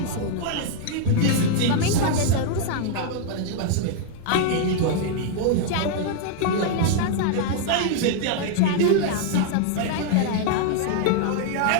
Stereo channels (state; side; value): different; both; correlation 0.00